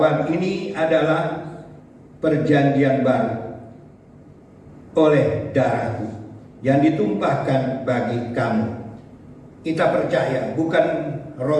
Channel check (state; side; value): identical; both; correlation 1.00